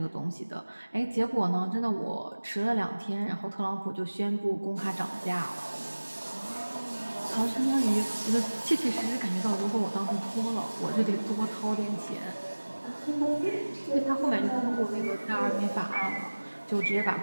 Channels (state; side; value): inverted; both; correlation -1.00